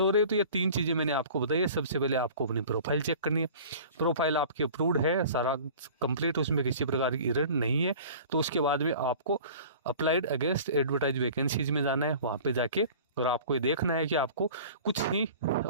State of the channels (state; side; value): inverted; both; correlation -0.43